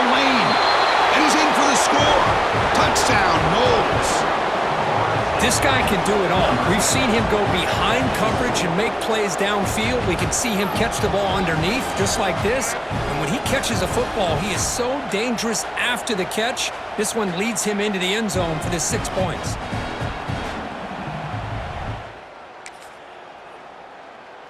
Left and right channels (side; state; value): both; identical; correlation 1.00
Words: lane, and he's in for the score. Touchdown, Noles. This guy can do it all. We've seen him go behind coverage and make plays downfield. We can see him catch the ball underneath, just like this. And when he catches a football, he is so dangerous after the catch. This one leads him into the end zone for the 6 points.